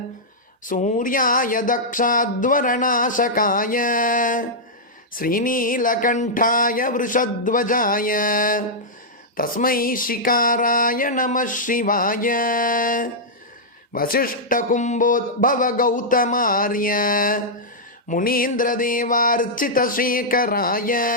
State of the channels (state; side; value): normal; both; correlation -0.09